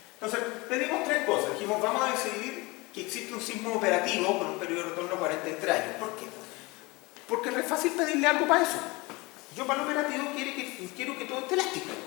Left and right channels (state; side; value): quieter; right; 24.2 dB